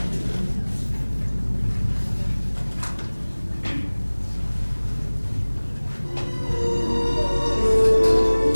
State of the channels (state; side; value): inverted; both; correlation -1.00